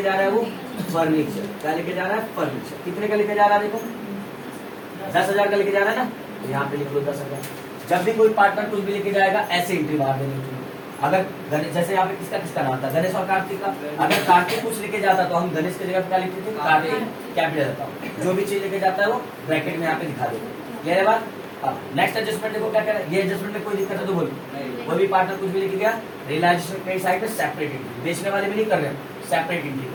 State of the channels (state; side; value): identical; both; correlation 1.00